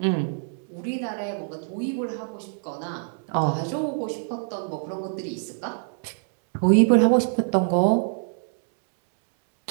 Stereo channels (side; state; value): left; silent; digital silence